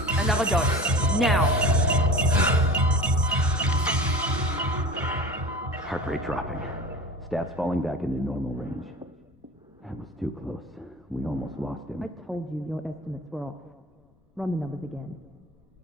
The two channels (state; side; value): normal; both; correlation 0.36